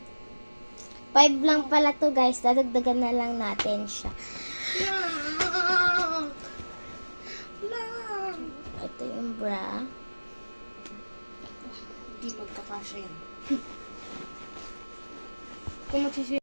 5 lang pala to guys. Dadagdagan na lang natin siya. Ito yung bra. Hindi magkakasya yan.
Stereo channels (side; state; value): both; inverted; correlation -1.00